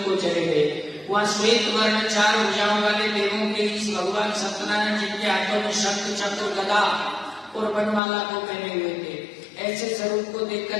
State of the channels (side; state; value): right; drops out; at 8.0 s